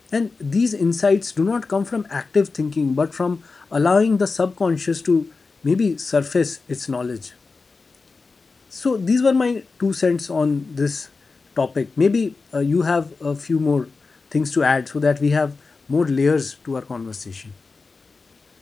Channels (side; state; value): right; quieter; 4.2 dB